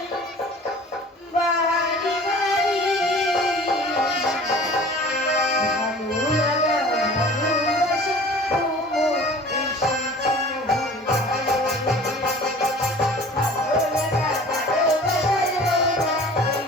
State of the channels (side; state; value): both; normal; correlation 0.45